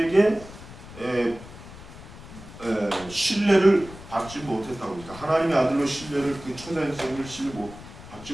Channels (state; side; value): noise; left; rumble, 16 dB below the sound